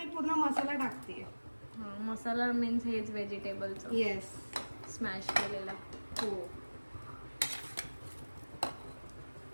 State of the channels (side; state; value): both; inverted; correlation -1.00